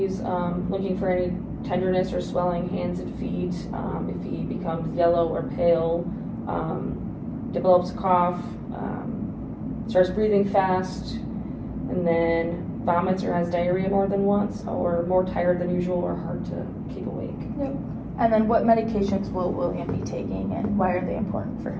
looking for any tenderness or swelling hands and feet, if he becomes yellow or pale, develops a cough, starts breathing fast, and then vomits or has diarrhea more than once, or more tired than usual or hard to keep awake. Yep. And then what medications will William be taking and why are they important for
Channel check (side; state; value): both; identical; correlation 1.00